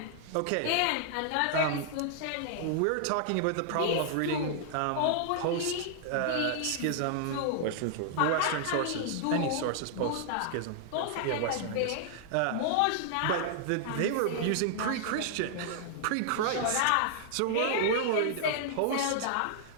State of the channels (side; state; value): both; different; correlation -0.01